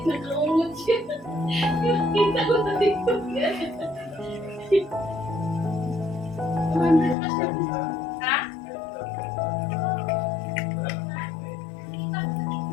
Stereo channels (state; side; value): drops out; right; at 7.2 s